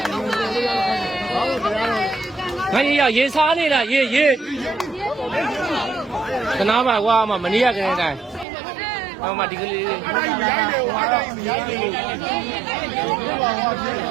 ရေစားနေတာရေခဏပါကွာမနေ့ကကလေးတိုင်းဟောမဒီကလေး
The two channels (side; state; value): left; drops out; at 8.5 s